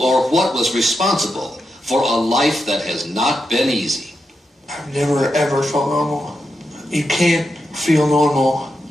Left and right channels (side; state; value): both; normal; correlation 0.86